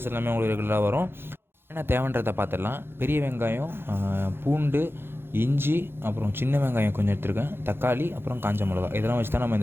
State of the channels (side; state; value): left; late; 0.11 ms